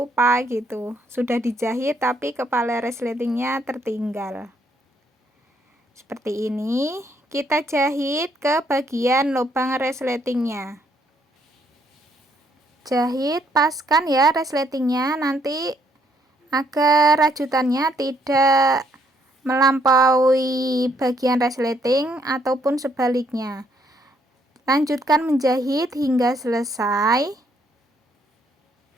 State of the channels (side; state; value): both; normal; correlation 0.70